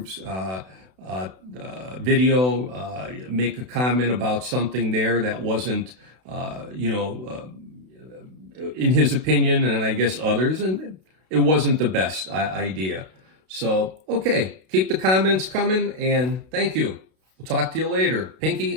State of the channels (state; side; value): late; left; 32 ms